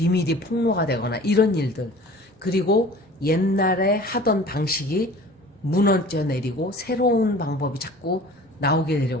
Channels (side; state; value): both; normal; correlation 0.44